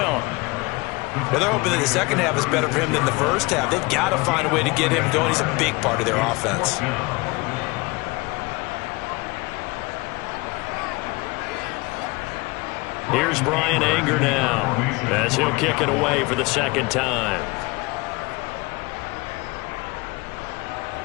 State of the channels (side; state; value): right; quieter; 24.8 dB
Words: Well, they're hoping that the second half is better for him than the first half. They've got to find a way to get him going. He's a big part of their offense. Here's Brian Anger now as he'll kick it away for the 2nd time.